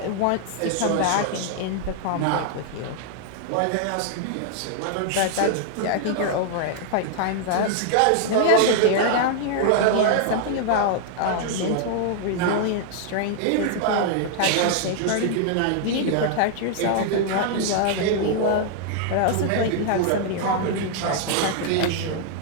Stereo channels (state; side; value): different; both; correlation 0.00